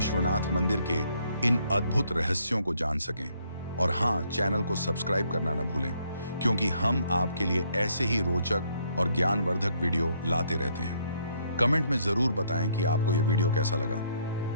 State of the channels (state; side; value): inverted; both; correlation -0.68